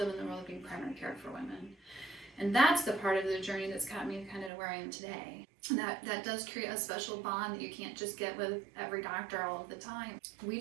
in the world of being primary care for women. And that's the part of the journey that's got me kind of to where I am today. And that does create a special bond that you can't just get with every doctor all of the time. We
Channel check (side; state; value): left; drops out; at 4.5 s